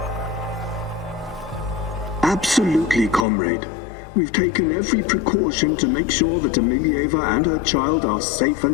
Absolutely, comrade. We've taken every precaution to make sure that Emilieva and her child are safe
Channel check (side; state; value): right; drops out; at 3.2 s